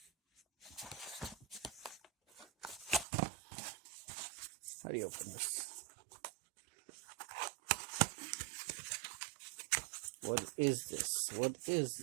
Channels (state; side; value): drops out; left; at 3.1 s